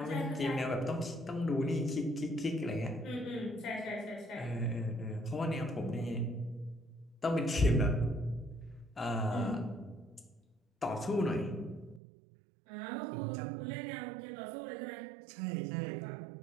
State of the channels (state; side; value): drops out; left; at 12.0 s